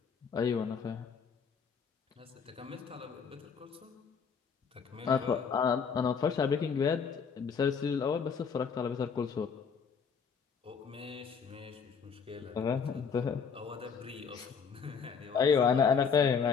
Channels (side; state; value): right; quieter; 6.2 dB